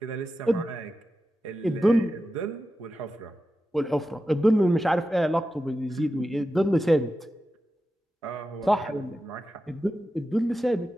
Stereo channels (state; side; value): normal; both; correlation 0.91